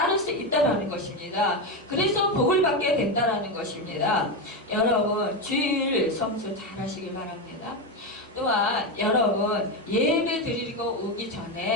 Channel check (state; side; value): normal; both; correlation 0.12